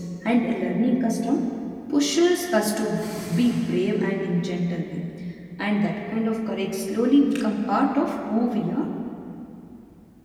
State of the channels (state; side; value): identical; both; correlation 1.00